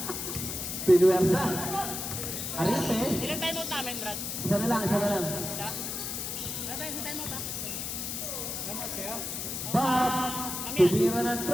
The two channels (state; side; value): noise; left; hiss, 4 dB below the sound